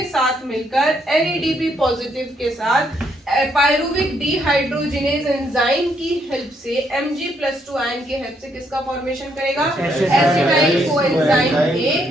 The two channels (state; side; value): normal; both; correlation 0.73